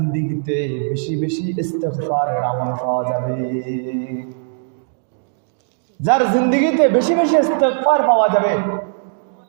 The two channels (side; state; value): left; silent; digital silence